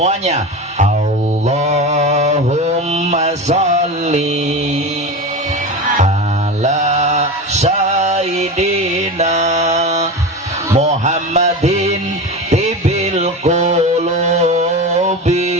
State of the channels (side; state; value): both; normal; correlation 0.26